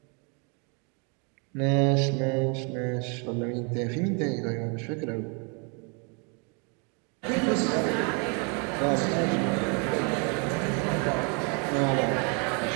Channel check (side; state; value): left; quieter; 35.5 dB